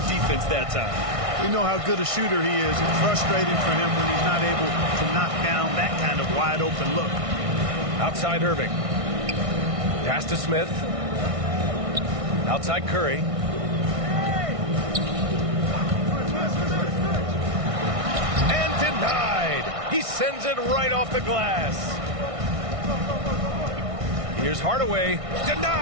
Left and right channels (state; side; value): late; left; 1.6 ms